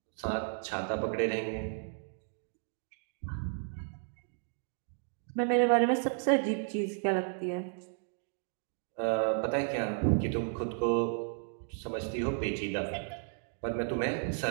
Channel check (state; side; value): silent; left; 55 dB below the other